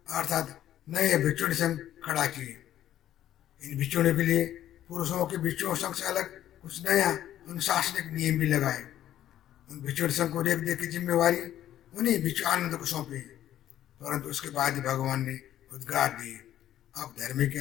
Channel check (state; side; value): quieter; right; 12.0 dB